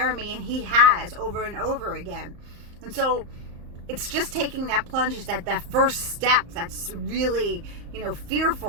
of me, and he has over and over again. And so it's just taking that plunge, is that first step that's really,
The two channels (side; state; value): left; late; 34 ms